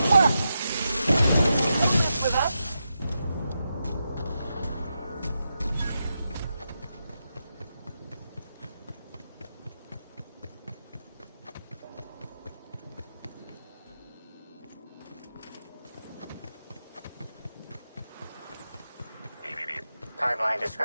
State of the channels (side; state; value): both; inverted; correlation -0.87